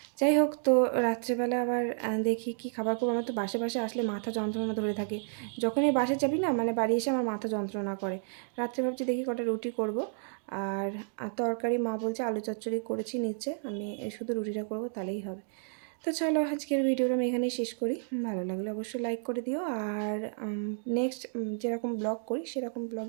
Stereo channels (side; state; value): left; silent; digital silence